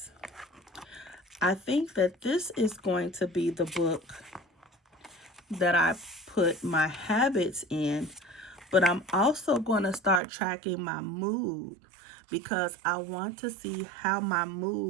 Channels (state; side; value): drops out; left; at 10.2 s